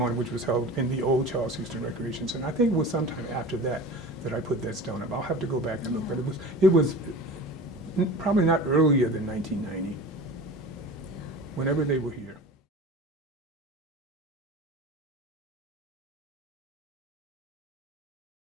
which was held in the old Charles Houston Recreation Center. I think it was sometime after that that I put that stone up. I'll have to go back and look, but it was probably not earlier than 1990, whenever they were here.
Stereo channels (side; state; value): both; normal; correlation 0.35